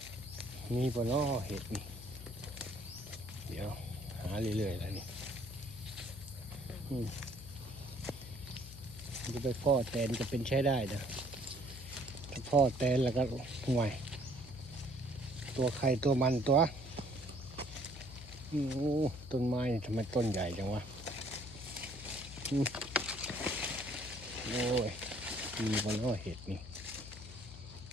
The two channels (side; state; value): left; noise; hum, 14 dB below the sound